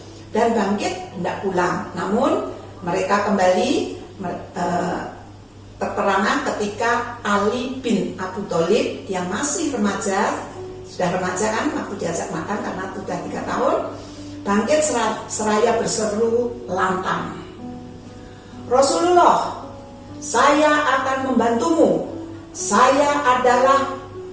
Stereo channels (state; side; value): identical; both; correlation 1.00